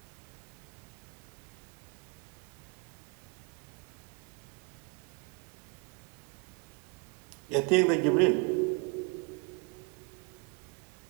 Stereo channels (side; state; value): left; quieter; 31.9 dB